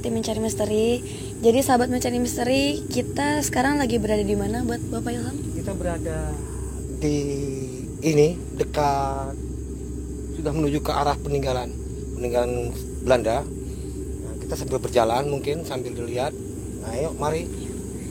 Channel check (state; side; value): identical; both; correlation 1.00